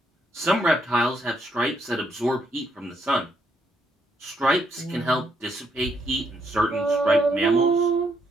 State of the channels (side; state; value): both; normal; correlation 0.75